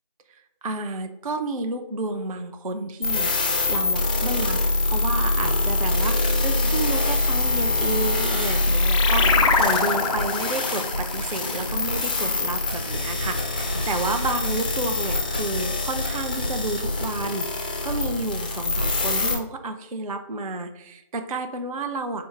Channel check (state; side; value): inverted; both; correlation -0.49